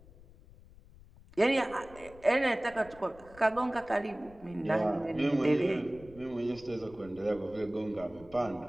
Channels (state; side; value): noise; left; rumble, 22 dB below the sound